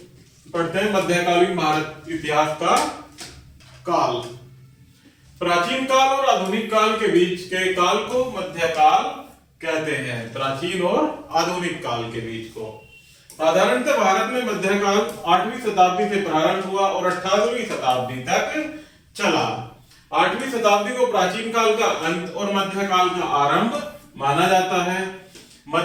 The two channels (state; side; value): identical; both; correlation 1.00